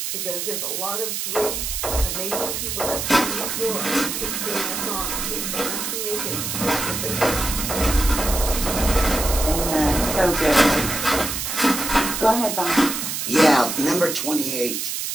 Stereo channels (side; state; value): right; noise; hiss, 3 dB below the sound